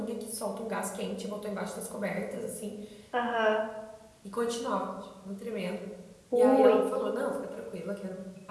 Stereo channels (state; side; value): identical; both; correlation 1.00